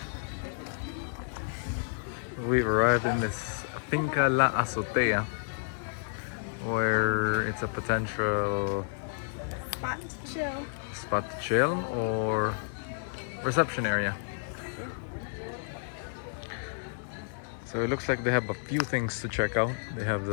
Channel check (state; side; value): silent; right; 57 dB below the other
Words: We've arrived in this Finca La Azotea, where it's a potential spot to chill or reception area. So it looks like they have a few things to check out. They have